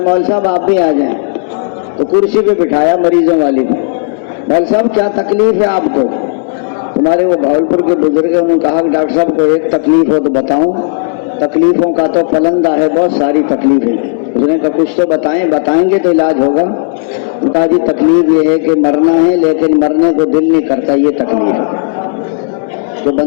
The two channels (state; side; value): silent; right; digital silence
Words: مول صاحب آپ بھی آ جائیں، تو کرسی پہ بٹھایا مریضوں والی پہ۔ مول صاحب کیا تکلیف ہے آپ کو؟ تمہارے وہ بھاولپور کے بزرگ ہیں، انہوں نے کہا کہ ڈاکٹر صاحب کو ایک تکلیف ہو تو بتاؤں، تکلیفوں کا تو پلندہ ہے، بہت ساری تکلیفیں۔ اس نے کہا کچھ تو بتائیں گے تو علاج ہوگا۔ نے کہا جی تکلیف یہ ہے کہ مرنا ہے لیکن مرنے کو دل نہیں کرتا، یہ تکلیف ہے۔ تو